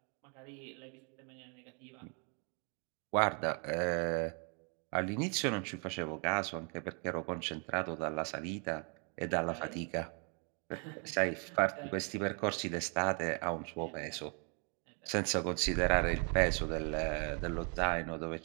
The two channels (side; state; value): left; quieter; 37.5 dB